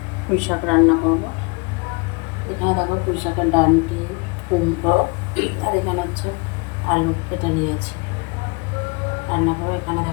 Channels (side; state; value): right; quieter; 29.5 dB